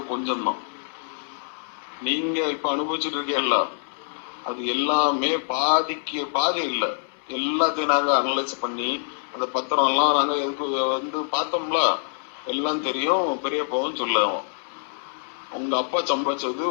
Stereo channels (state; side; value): silent; right; 62 dB below the other